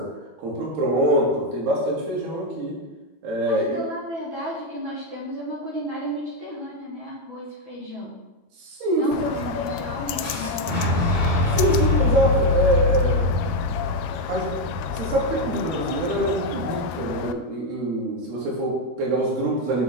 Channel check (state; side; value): late; left; 13 ms